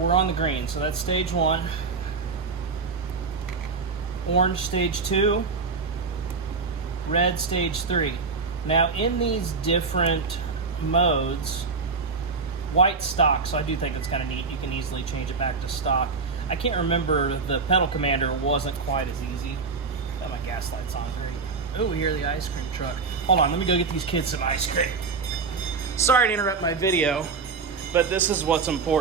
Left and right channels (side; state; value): left; quieter; 4.7 dB